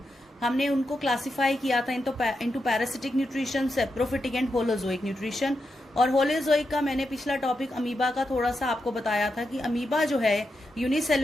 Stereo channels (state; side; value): normal; both; correlation 0.86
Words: हमने उनको क्लासिफाई किया था into parasitic nutrition, saprophytic and holozoic nutrition. और होलोजोइक का मैंने पिछला टॉपिक अमीबा का थोड़ा सा आपको बताया था कि अमीबा जो है